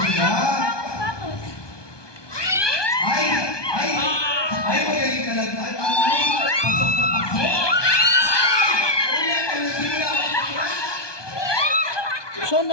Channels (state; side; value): late; right; 1.2 ms